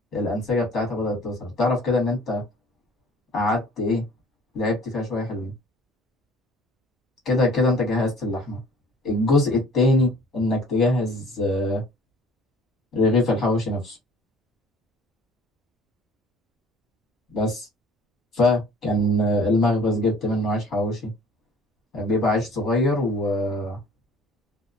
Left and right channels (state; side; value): normal; both; correlation 0.51